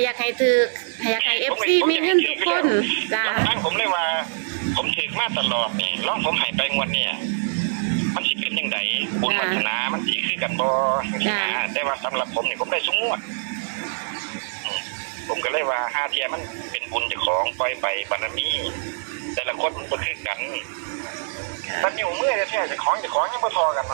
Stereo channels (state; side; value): silent; left; digital silence